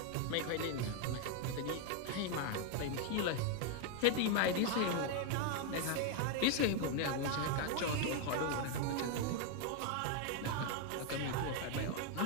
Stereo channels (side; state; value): both; different; correlation 0.01